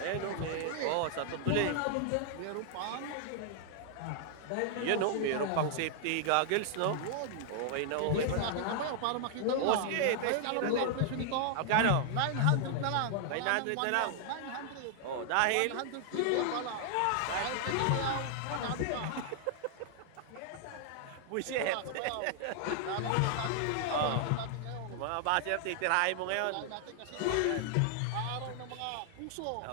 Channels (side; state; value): both; different; correlation 0.00